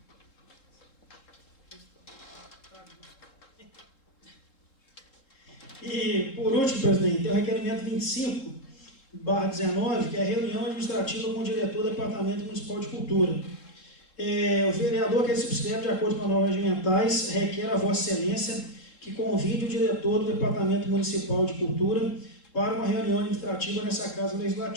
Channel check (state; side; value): late; right; 3.7 ms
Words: E, por último, presidente, tem o requerimento 25/19, que é a reunião administrativa com o diretor do Departamento Municipal de Cultura. O vereador que se subscreve de acordo com as normas regimentais requer a Vossa Excelência que convide o diretor do Departamento Municipal de Cultura para uma reunião administrativa nessa Casa